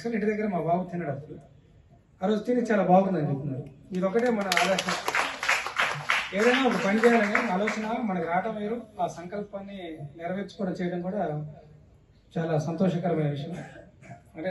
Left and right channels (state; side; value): identical; both; correlation 1.00